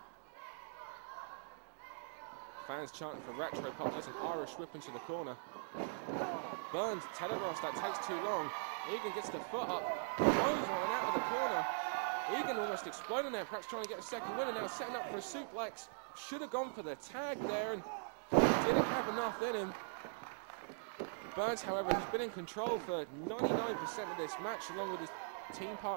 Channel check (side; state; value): left; silent; digital silence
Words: fans chanting for Retro Pop. There's an Irish whip into the corner. Burns telegraphs that takes too long. Egan gets the foot up, throws one out of the corner. Egan almost exploding there, perhaps trying to get a second win, and now setting up for a suplex. Should have gone for the tag there and didn't have enough in him. Burns, however, has been in control for 99% of this match, along with his team